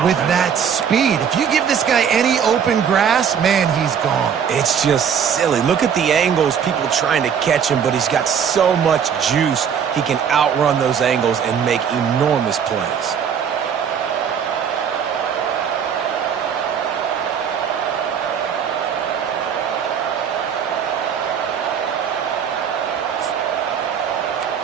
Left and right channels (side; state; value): left; quieter; 7.7 dB